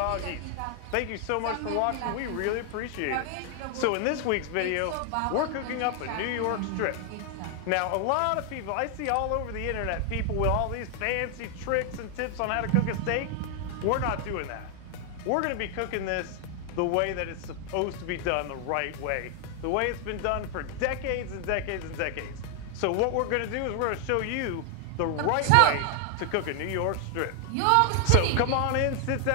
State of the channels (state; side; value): different; both; correlation 0.00